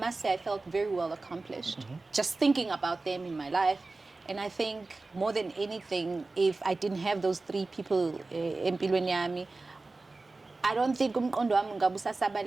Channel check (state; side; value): quieter; left; 3.4 dB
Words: say I felt very well accomplished. Just thinking about them in my life. And I think more than anything, if I didn't have those 3 people empilweni yami, I don't think umqondo wami